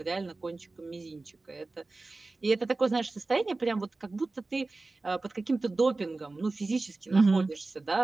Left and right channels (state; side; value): quieter; left; 3.4 dB